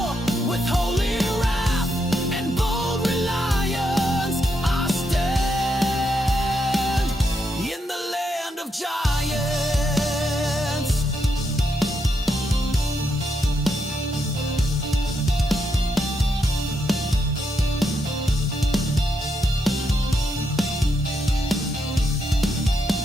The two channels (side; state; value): both; normal; correlation 0.80